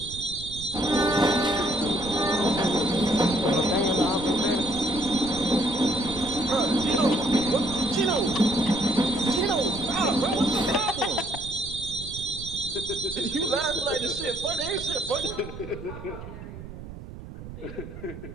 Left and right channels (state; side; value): noise; right; rumble, 12 dB below the sound